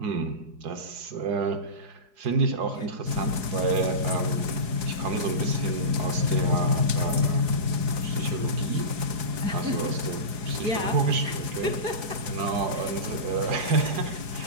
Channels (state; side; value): late; left; 4.8 ms